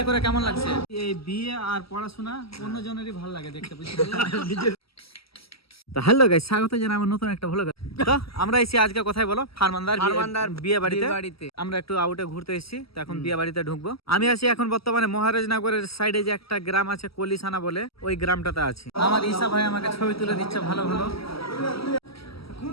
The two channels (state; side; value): late; right; 0.75 ms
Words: করে কেমন লাগছে? এই বিয়ে আর পড়াশোনা অন্য জনেরই ভালো লাগে দেখতে, বুঝতে তো হ্যালো গাইস, স্বাগত জানাই আমার নতুন একটা ভ্লগে। তো আমরা এসেছি আজকে কোথায় বলো? ফারমানদার বিয়ে বাড়িতে। আমরা একটু আউটে ঘুরতে এসেছি, তো এখন বিয়ে বাড়িতে ঢুকবো। আমি আছি এখন বর্তমানে মহারাজনগরের সাইডে যে একটা গ্রাম আছে কলিসানা বলে, ওই গ্রামটাতে আছি। আমার ঈশা ভাই আমাকে ছবি তুলে দিচ্ছে ভালো ভালো।